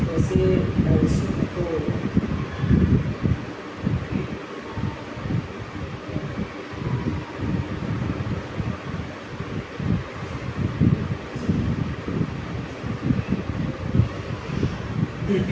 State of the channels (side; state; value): both; identical; correlation 1.00